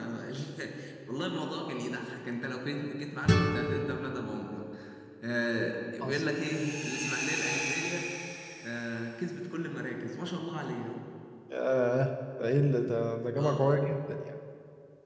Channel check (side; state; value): both; identical; correlation 1.00